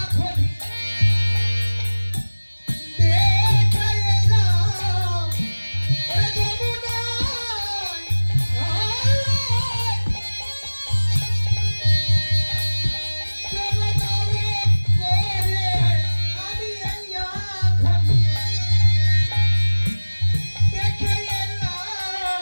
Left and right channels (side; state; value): both; inverted; correlation -1.00